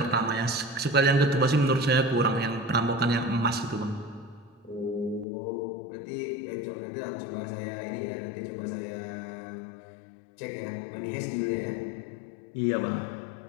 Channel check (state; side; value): drops out; right; at 5.2 s